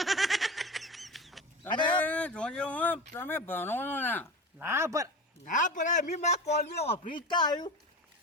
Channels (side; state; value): both; normal; correlation 0.28